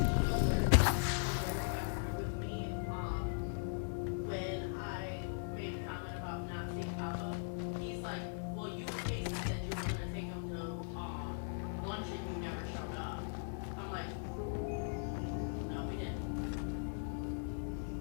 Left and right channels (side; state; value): right; silent; digital silence